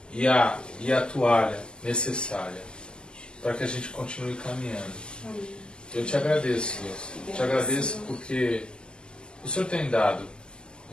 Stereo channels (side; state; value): right; late; 0.048 ms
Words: e a toalha necessária para que a gente continue caminhando. Eu te agradeço, Deus. Te agradeço porque o Senhor tem dado